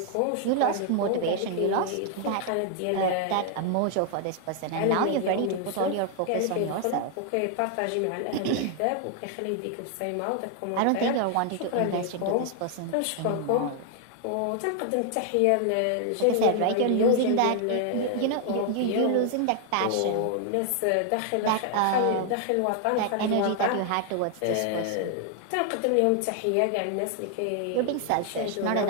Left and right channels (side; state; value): both; different; correlation 0.00